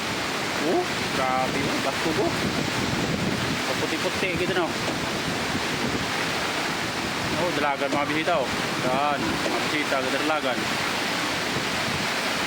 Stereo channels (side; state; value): both; identical; correlation 1.00